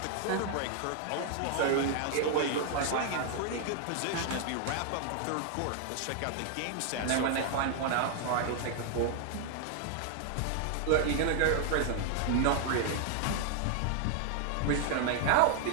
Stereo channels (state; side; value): different; both; correlation 0.00